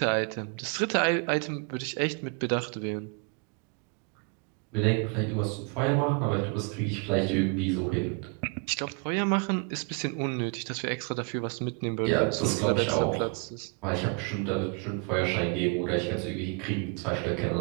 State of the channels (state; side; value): quieter; left; 35.9 dB